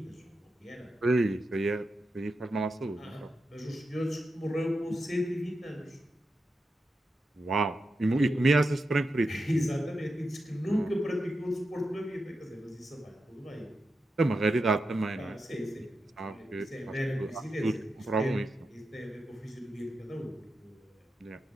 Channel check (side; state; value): both; normal; correlation 0.88